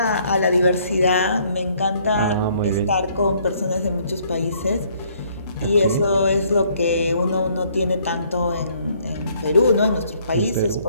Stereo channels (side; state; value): both; inverted; correlation -0.64